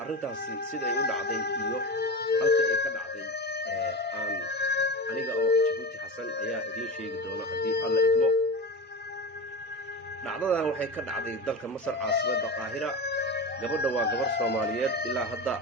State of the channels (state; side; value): normal; both; correlation 0.25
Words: arrintaasi siday u dhacday iyo halka ay ka dhacday aniga oo Jabuuti Xasan ayaa idiin sheegi doona haddii alla idmo. dhacdadan waxay ka dhacday dalka Masar caasimadda Qaahira. gabadha waa gabar Soomaaliyeed ilaa hadda